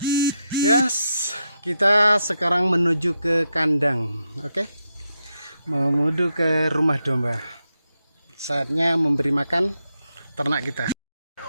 Yes, kita sekarang menuju ke kandang. Oke. Menuju ke rumah domba. Saatnya memberi makan ternak kita.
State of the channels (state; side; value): inverted; both; correlation -0.84